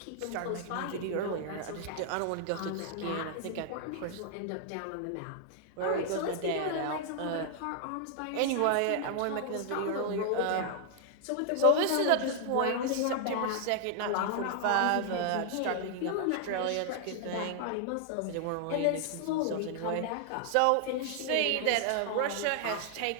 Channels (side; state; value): both; different; correlation 0.00